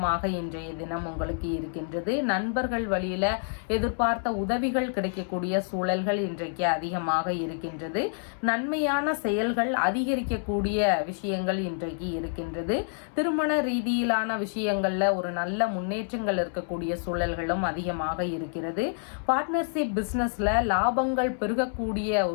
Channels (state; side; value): silent; right; 59 dB below the other